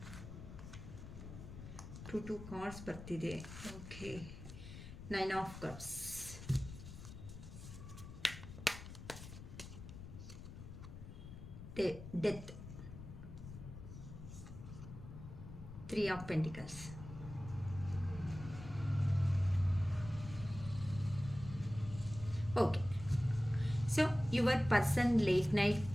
Two cards ಬರ್ತಿದೆ. Okay, Nine of Cups, Death, Three of Pentacles. Okay, so your person late night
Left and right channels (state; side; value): noise; left; rumble, 12 dB below the sound